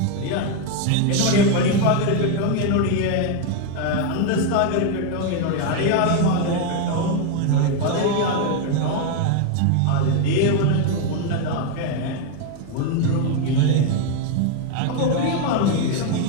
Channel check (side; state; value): both; different; correlation 0.01